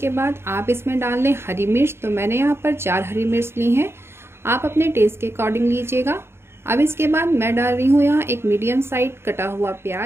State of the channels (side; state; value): left; late; 0.12 ms